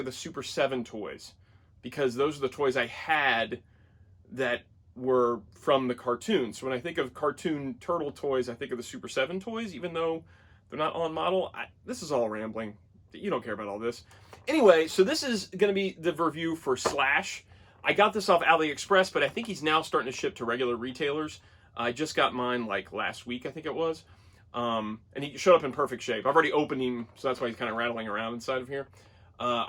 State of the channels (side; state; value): both; identical; correlation 1.00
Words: the Super 7 toys, because those are the toys I had that were from the cartoon. So when I think of cartoon turtle toys, I think of the Super 7 toys, even though they're not on model. This is all rambling. You don't care about all this. Anyway, so this is going to be the review for Slash. I got this off AliExpress, but I think he's now starting to ship to regular retailers. I just got mine like last week, I think it was. And he showed up in perfect shape. I've already opened him, so that's why he's kind of rattling around inside of here.